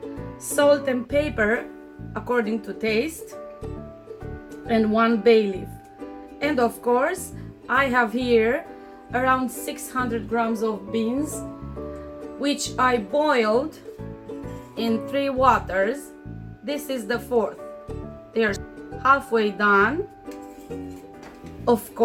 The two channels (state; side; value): identical; both; correlation 1.00